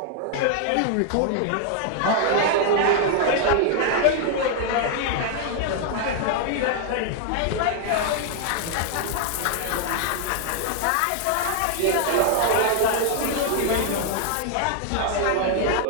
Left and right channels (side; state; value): both; different; correlation 0.00